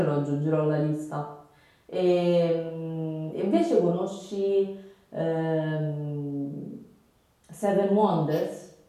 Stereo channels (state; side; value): identical; both; correlation 1.00